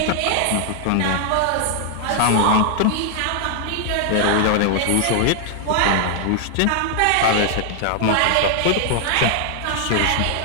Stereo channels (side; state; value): both; different; correlation 0.00